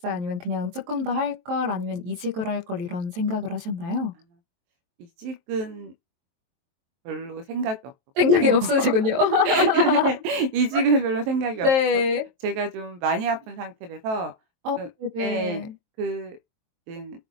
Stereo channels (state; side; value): late; left; 23 ms